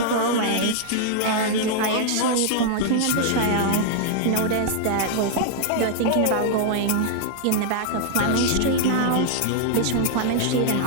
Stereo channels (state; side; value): different; both; correlation -0.01